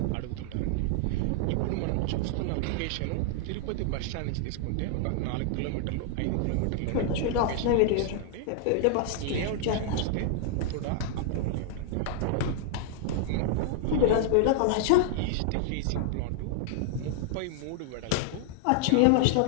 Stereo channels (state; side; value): different; both; correlation 0.00